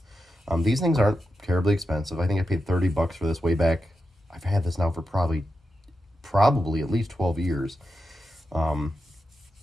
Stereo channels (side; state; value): both; normal; correlation 0.88